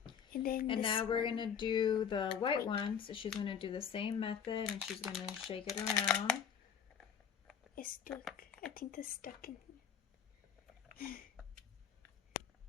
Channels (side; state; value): right; quieter; 7.7 dB